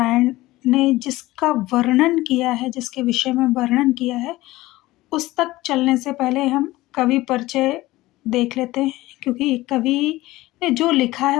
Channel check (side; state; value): right; quieter; 18.2 dB